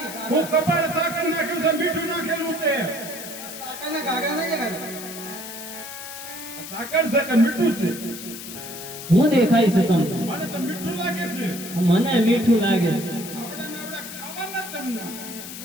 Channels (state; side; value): noise; left; hiss, 11 dB below the sound